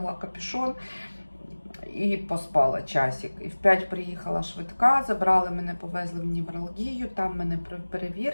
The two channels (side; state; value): both; inverted; correlation -1.00